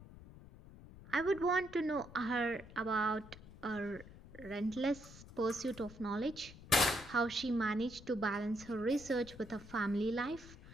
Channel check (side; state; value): left; noise; rumble, 18 dB below the sound